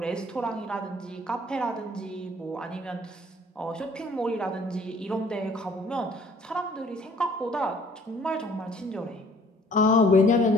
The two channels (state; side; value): normal; both; correlation 0.57